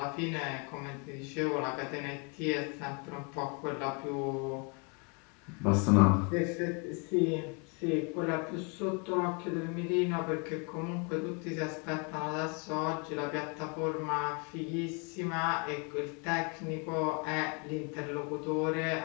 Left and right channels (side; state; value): right; quieter; 34.6 dB